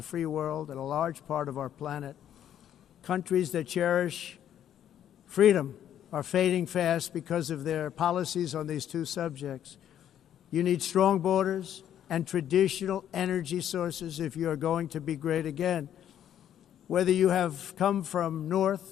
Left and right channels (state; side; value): quieter; right; 10.4 dB